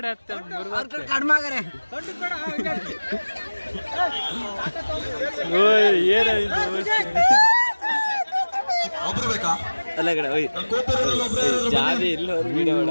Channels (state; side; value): inverted; both; correlation -1.00